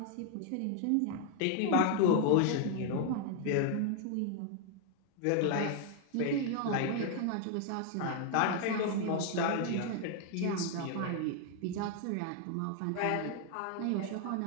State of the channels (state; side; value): different; both; correlation 0.00